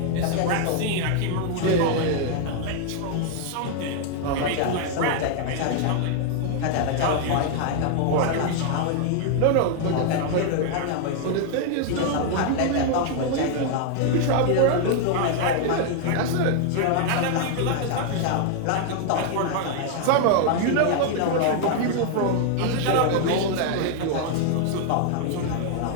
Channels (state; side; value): different; both; correlation 0.00